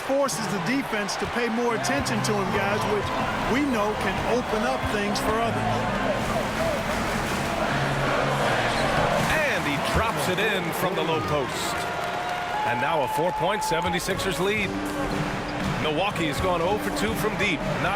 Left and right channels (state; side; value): identical; both; correlation 1.00